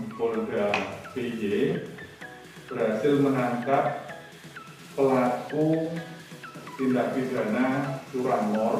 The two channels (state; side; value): identical; both; correlation 1.00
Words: Polda DIY berhasil menangkap pelaku tindak pidana